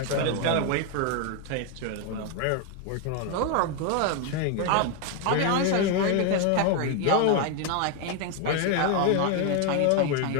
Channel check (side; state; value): both; different; correlation 0.01